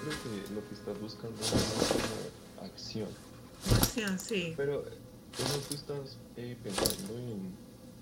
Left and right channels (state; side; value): identical; both; correlation 1.00